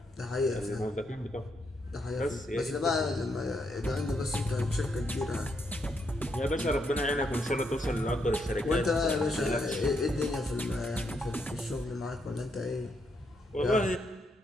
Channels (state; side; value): normal; both; correlation 0.78